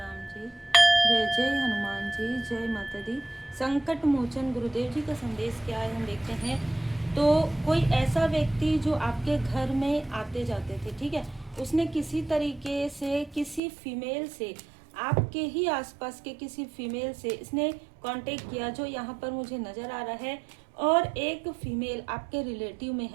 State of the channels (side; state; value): left; drops out; at 13.6 s